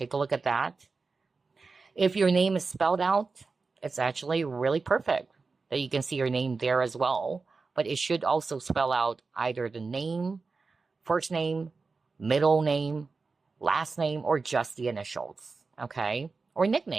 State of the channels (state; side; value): quieter; left; 4.3 dB